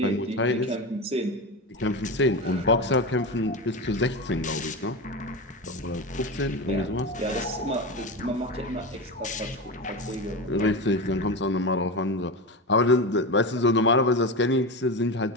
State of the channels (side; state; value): both; normal; correlation 0.21